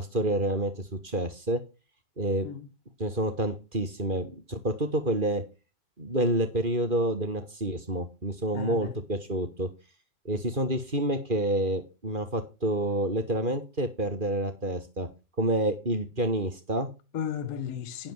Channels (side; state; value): left; late; 2.4 ms